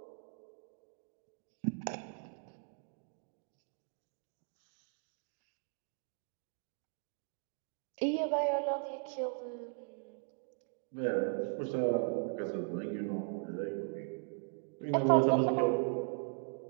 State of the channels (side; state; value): left; silent; 52 dB below the other